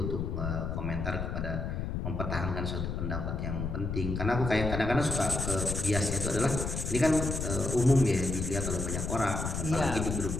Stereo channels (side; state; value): left; noise; rumble, 3 dB below the sound